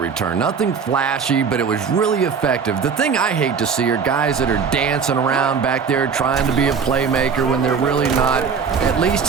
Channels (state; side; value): quieter; left; 6.1 dB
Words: Nothing flashy, but it was really effective. The thing I hate to see are guys that are dancing around back there trying to be a playmaker when they're really not. At least